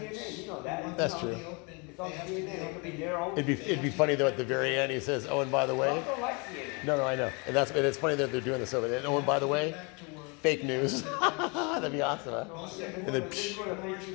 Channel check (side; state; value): right; quieter; 31.6 dB